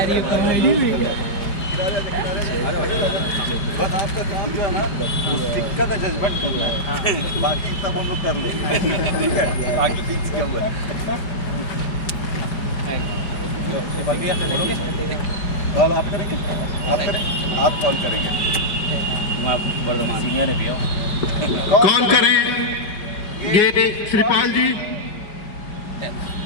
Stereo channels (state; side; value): late; right; 5.1 ms